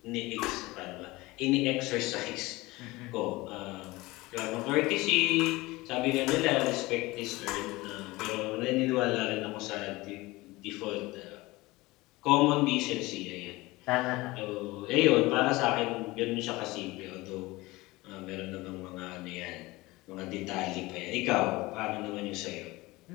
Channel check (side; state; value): right; quieter; 20.9 dB